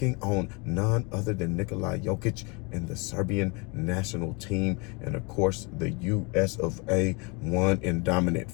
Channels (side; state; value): right; quieter; 30.1 dB